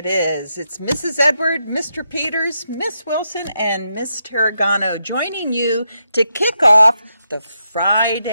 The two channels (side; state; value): both; inverted; correlation -0.83